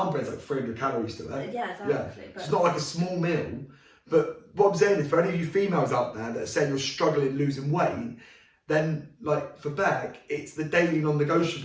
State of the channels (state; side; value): identical; both; correlation 1.00